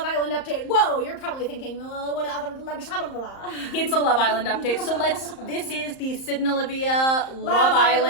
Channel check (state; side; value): late; right; 34 ms